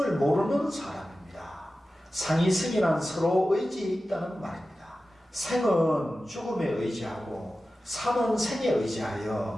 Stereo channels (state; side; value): normal; both; correlation 0.94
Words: 모르는 사람입니다. 상이성이란 서로 의지에 있다는 말입니다. 생은 죽음에 의지하고 사는 생에